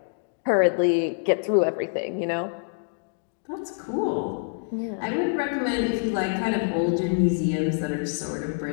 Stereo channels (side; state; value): right; silent; digital silence